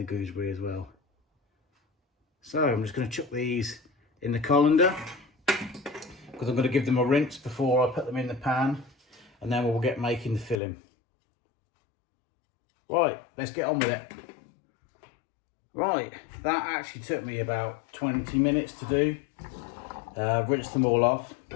gooseberry as well. So I'm just going to chuck these in the colander because I'm going to give them a rinse before I put them in the pan, and then we'll get making the filling. Right, let's get on with it. Right, that actually took me about 20 minutes to do. Rinse them all off.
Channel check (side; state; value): right; drops out; at 10.6 s